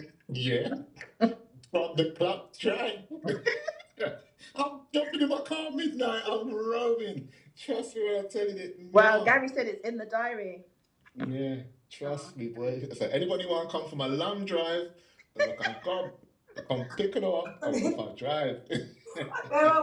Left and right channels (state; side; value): identical; both; correlation 1.00